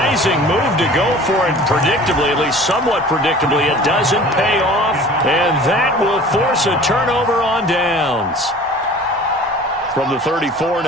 move to go for it. Predictably, at least somewhat predictably, it doesn't pay off, and that will force a turnover on downs. From the 34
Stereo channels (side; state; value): both; normal; correlation 0.44